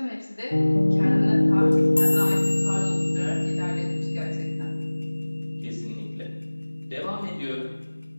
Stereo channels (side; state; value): both; inverted; correlation -1.00